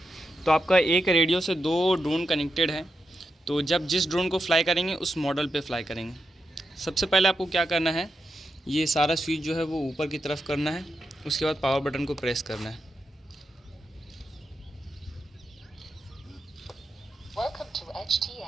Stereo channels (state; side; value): normal; both; correlation 0.86